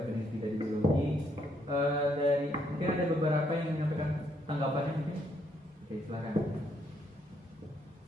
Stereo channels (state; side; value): normal; both; correlation 0.72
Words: peneliti dari biologi. Dari mungkin ada beberapa yang menyampaikan tanggapannya mungkin. Oke, silakan.